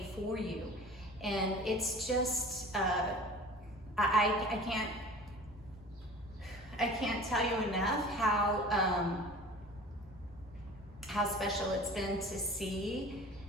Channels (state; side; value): normal; both; correlation 0.41